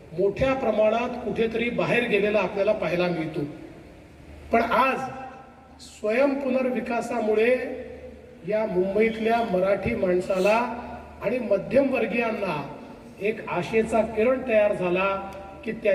मोठ्या प्रमाणात कुठेतरी बाहेर गेलेला आपल्याला पाहायला मिळतो. पण आज स्वयं पुनर्विकासामुळे या मुंबईतल्या मराठी माणसाला आणि मध्यमवर्गीयांना एक आशेचा किरण तयार झाला की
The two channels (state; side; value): identical; both; correlation 1.00